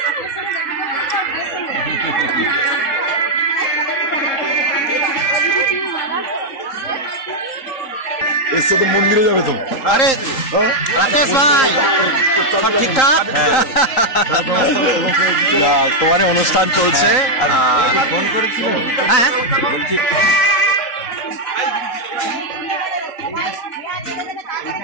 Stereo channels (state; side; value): late; right; 3.8 ms